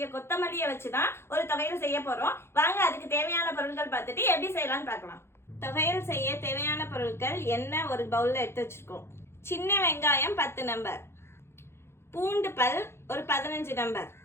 கொத்தமல்லியை வச்சுதான் ஒரு தொகையல் செய்ய போறோம். வாங்க அதுக்கு தேவையான பொருட்கள் பார்த்துட்டு எப்படி செய்யலாம்னு பார்க்கலாம். தொகையல் செய்ய தேவையான பொருட்கள் எண்ணெய் ஒரு பவுல்ல எடுத்து வச்சிருக்கோம். சின்ன வெங்காயம் 10 நம்பர், பூண்டு பல் ஒரு 15 நம்பர்,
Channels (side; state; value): right; late; 0.12 ms